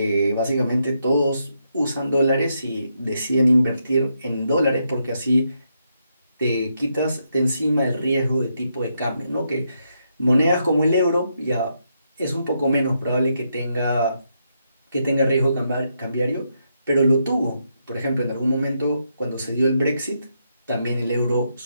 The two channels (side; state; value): both; inverted; correlation -0.80